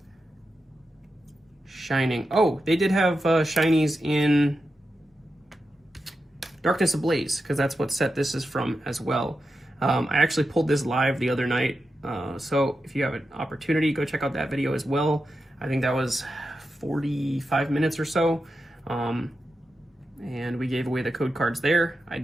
Shining. Oh, they did have shinies in Darkness Ablaze, because that's what set this is from as well. I actually pulled this live the other night, so if you have an opportunity, go check out that video as well. I think that was 45 minutes or so, and we gave away the code cards there. I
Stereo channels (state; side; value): normal; both; correlation 0.89